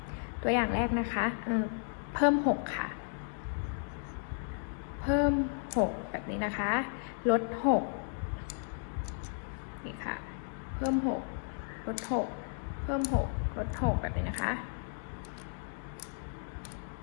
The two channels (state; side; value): silent; right; digital silence